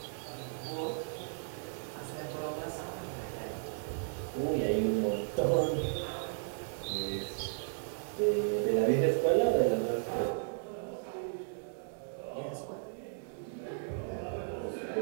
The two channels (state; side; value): silent; left; digital silence